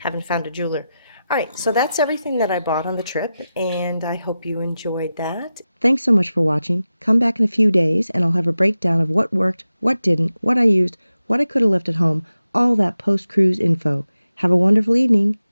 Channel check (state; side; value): inverted; both; correlation -0.92